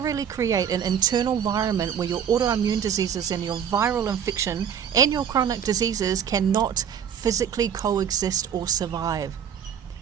create an internal environment where your autoimmune diseases and your viral infection and your chronic diseases cannot physically coexist or survive.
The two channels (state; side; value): quieter; left; 8.3 dB